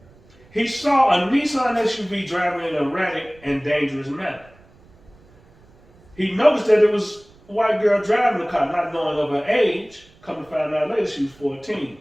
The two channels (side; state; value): right; noise; rumble, 28 dB below the sound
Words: he saw a Nissan SUV driving in an erratic and dangerous manner. He noticed that it was a white girl driving the car, not knowing of her age. Come to find out later, she was 14.